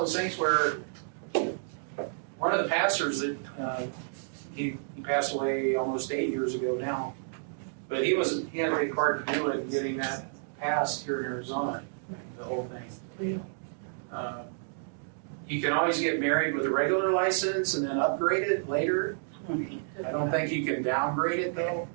things where one of the pastors that he passed away almost 8 years ago now, but he had a big part to do in getting that passed here in Arizona, the whole thing. You can always get married with a regular license and then upgrade it later. I don't think you can downgrade it though.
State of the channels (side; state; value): left; silent; digital silence